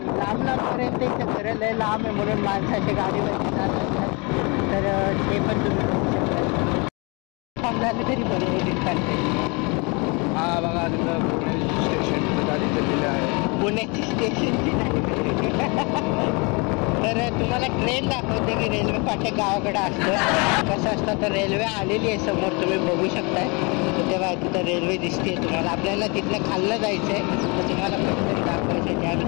लांब लांबपर्यंत इथं घरं लय लांब आहे, म्हणून माणसाची गाडीवरती जात असतात. तर ते पण तुम्ही बघू शकता. थांबल्याने तरी बरोबर काढते. हा बघा तिथं पुणे स्टेशन गाडी दिलेली आहे. पुण्याची स्टेशनची तर तुम्हाला ट्रेन दाखवते की रेल्वे फाटक गावाकडे असतं कसं असतं. तर रेल्वे आलेली आहे समोर, तुम्ही बघू शकताय. तर तेव्हा तिथं रेल्वे दिसते तुम्हाला. आपल्याला तिथलं खाल्लं जायचं आहे, तर तुम्हाला पटकन दाखवायचं आहे. त्यावेळी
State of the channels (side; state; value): right; quieter; 29.9 dB